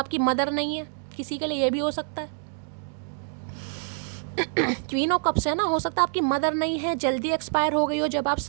मदर नहीं है, किसी के लिए ये भी हो सकता है। क्वीन ऑफ कप्स है ना, हो सकता है आपकी मदर नहीं है, जल्दी एक्सपायर हो गई हो जब आप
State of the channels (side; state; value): left; silent; digital silence